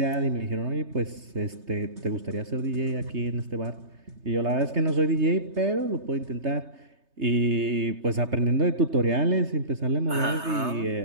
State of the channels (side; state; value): left; late; 3.3 ms